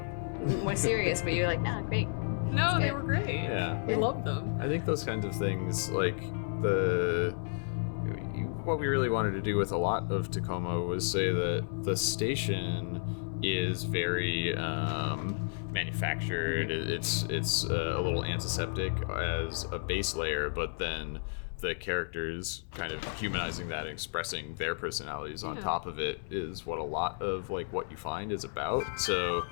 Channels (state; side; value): silent; right; 56 dB below the other